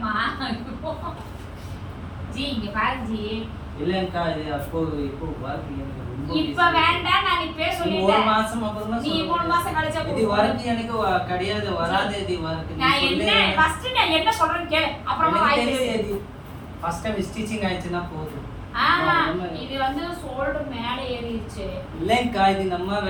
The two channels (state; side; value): identical; both; correlation 1.00